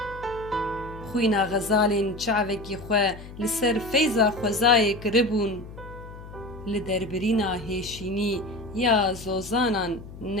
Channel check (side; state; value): left; noise; hum, 15 dB below the sound